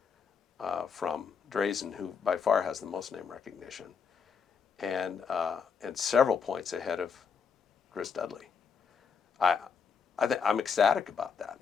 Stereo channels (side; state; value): right; quieter; 6.2 dB